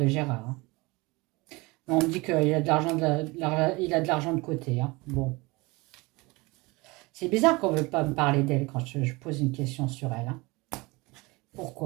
Gérard. Hein. On me dit qu'il a de l'argent de côté. Hein. Bon. C'est bizarre qu'on ne veut pas me parler d'elle quand je pose une question sur elle. Hein.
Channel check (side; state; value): left; quieter; 24.1 dB